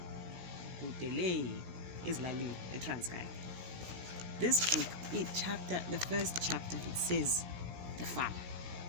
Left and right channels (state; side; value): late; left; 17 ms